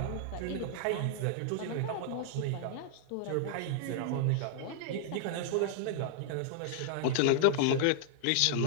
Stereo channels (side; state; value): both; different; correlation -0.01